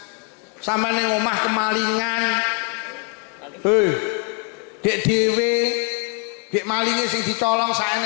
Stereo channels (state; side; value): quieter; right; 39.1 dB